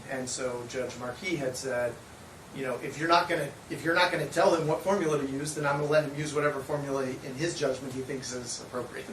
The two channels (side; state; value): both; identical; correlation 1.00